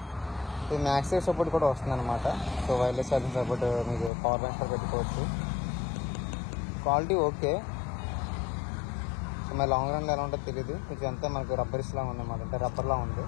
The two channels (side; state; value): right; drops out; at 4.1 s